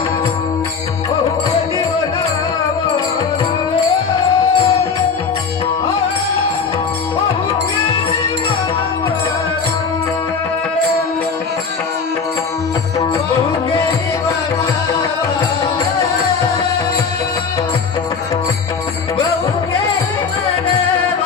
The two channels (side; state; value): right; quieter; 5.5 dB